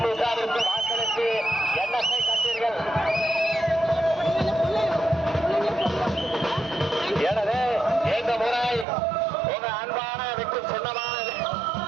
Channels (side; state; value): left; drops out; at 8.8 s